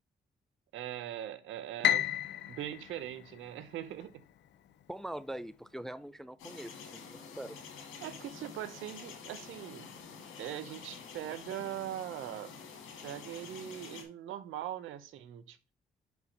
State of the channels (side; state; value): both; normal; correlation 0.31